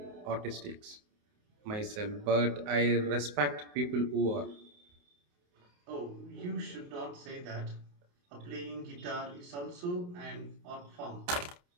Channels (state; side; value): late; left; 28 ms